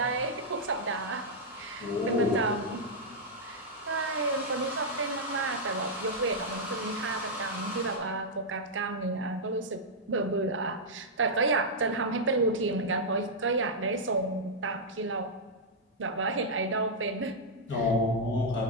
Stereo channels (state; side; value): normal; both; correlation -0.06